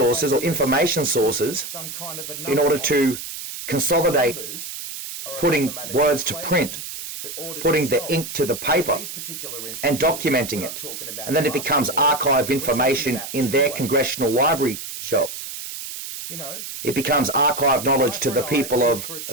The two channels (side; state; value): right; noise; hiss, 9 dB below the sound